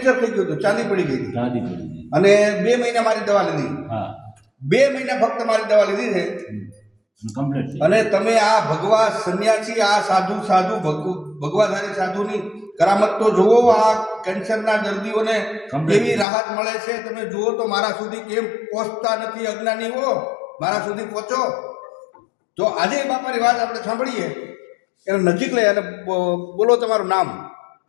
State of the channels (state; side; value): drops out; right; at 16.2 s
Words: થઈ ગયું હતું, ચાંદી પડી ગઈ હતી ચાંદી પડી ગઈ. અને 2 મહિના મારી દવા લીધી. હા, 2 મહિના ફક્ત મારી દવા લીધી છે કમ્પ્લીટ. અને તમે આ ભગવા સંન્યાસી, આ સાધુ ભગવાધારી સાધુની કરામત તો જુઓ. આ કેન્સરના દર્દીઓને કેવી રાહત મળે છે તમે જુઓ તો. મારા સુધી કેમ પહોંચતા નથી અજ્ઞાનીઓ? મારા સુધી પહોંચો. તો આજે બાપાની વાત આપણે સાંભળીએ. એને નજીક લઈ અને બોલો તમારું નામ.